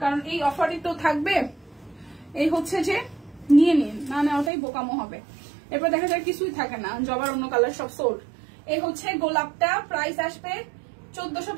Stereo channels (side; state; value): left; drops out; at 4.5 s